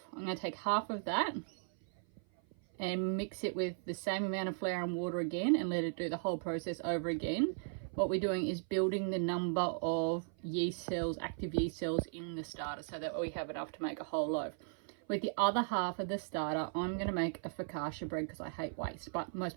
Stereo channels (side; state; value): left; silent; 53 dB below the other